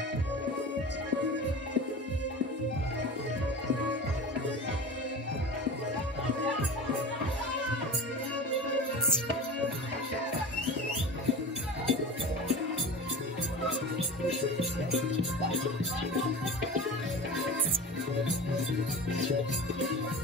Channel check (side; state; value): both; normal; correlation 0.31